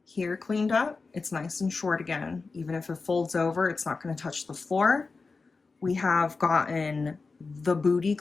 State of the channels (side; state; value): right; quieter; 4.2 dB